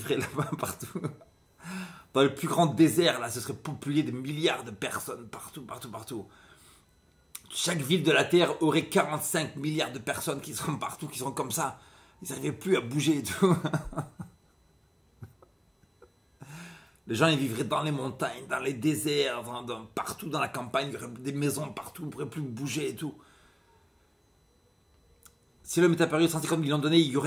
là-bas partout. Dans le plus grand désert, là, ce serait populé de milliards de personnes partout. Chaque ville de la Terre aurait 45 milliards de personnes qui seront partout, qui seront comme ça. Ils n'arriveraient plus à bouger et tout. Les gens, ils vivraient dans les montagnes, dans les déserts, partout dans la campagne. Il y aurait des maisons partout, ils ne pourraient plus bouger et tout. Si l'homme est apparu 150 millions d'années, il y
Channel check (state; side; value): identical; both; correlation 1.00